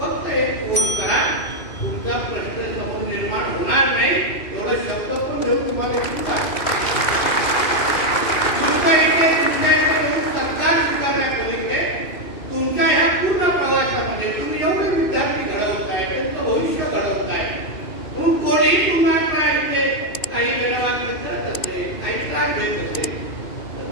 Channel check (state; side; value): late; right; 2.5 ms